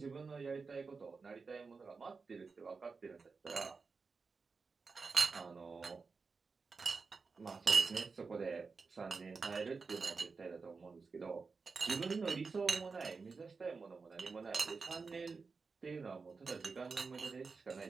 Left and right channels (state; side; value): quieter; left; 4.6 dB